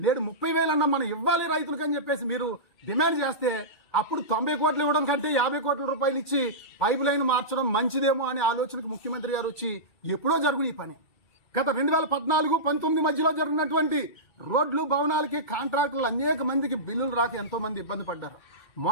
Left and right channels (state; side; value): late; right; 2.3 ms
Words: నేడు 30,000 అన్న మనం ఇవ్వాలి రైతులకు అని చెప్పేసి మీరు డిమాండ్ చేస్తే అప్పుడు 90 కోట్లు ఇవ్వడం కంటే 50 కోట్ల రూపాయలు ఇచ్చి పైప్ లైన్ మార్చడం మంచిదేమో అనే ఆలోచనకు ముఖ్యమంత్రి గారు వచ్చి ఎప్పుడో జరుగును ఈ పని. గత 2014-19 మధ్యలో జరిగినటువంటి రోడ్లు, భవనాలకి కాంట్రాక్టులు అనేక మందికి బిల్లులు రాక ఎంతో మంది ఇబ్బంది పడ్డారు.